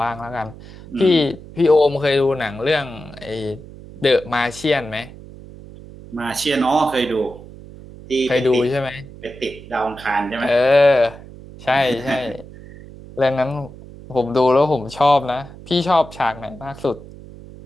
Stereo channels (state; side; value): noise; right; hum, 17 dB below the sound